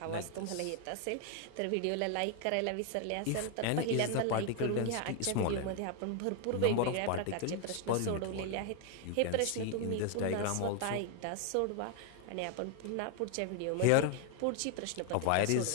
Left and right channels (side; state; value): both; different; correlation 0.01